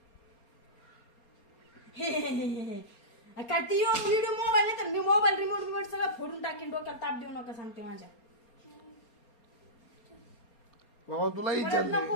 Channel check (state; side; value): late; right; 4.3 ms